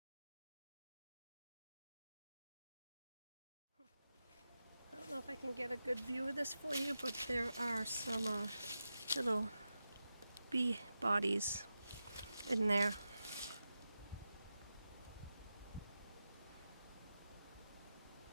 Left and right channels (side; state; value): both; inverted; correlation -0.91